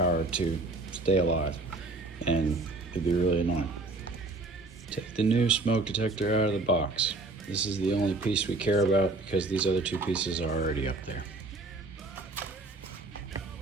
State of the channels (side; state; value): left; quieter; 3.2 dB